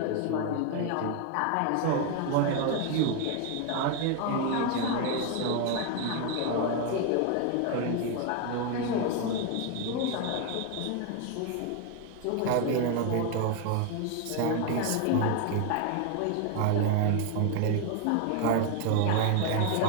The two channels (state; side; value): different; both; correlation 0.01